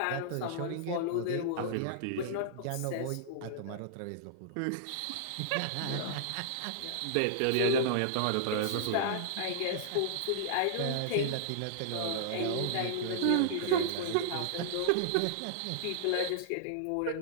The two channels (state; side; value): different; both; correlation -0.01